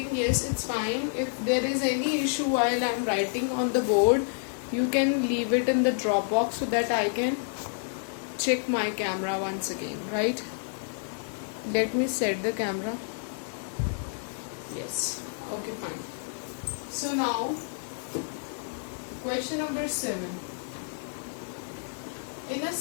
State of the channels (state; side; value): silent; right; 58 dB below the other